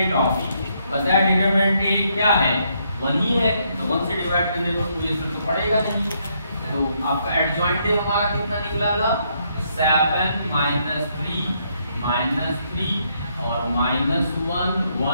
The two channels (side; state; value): both; inverted; correlation -0.74